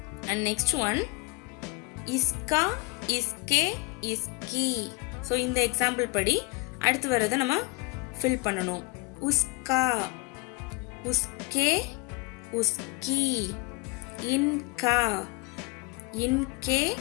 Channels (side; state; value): right; quieter; 26.2 dB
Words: and next one, इसका इसके इसकी. ஸோ இந்த எக்ஸாம்பிள் படி அடுத்து வர்றதை நம்ம ஃபில் பண்ணணும். உஸ்கா உஸ்கே உஸ்கி. இன்கா இன்கே